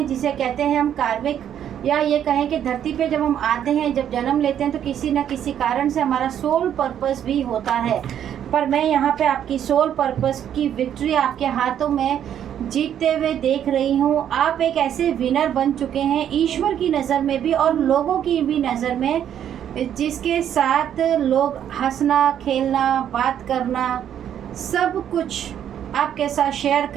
जिसे कहते हैं हम कार्मिक, या ये कहें कि धरती पे जब हम आते हैं, जब जन्म लेते हैं तो किसी न किसी कारण से हमारा सोल पर्पस भी होता है। पर मैं यहाँ पे आपकी सोल पर्पस की विक्ट्री आपके हाथों में जीतते हुए देख रही हूँ। आप एक ऐसे विनर बन चुके हैं ईश्वर की नज़र में भी और लोगों की भी नज़र में, जिसके साथ लोग हंसना, खेलना, बात करना, सब कुछ आपके साथ शेयर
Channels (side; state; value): left; quieter; 9.8 dB